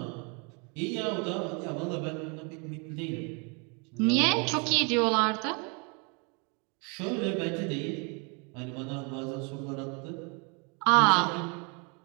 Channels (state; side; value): quieter; left; 33.8 dB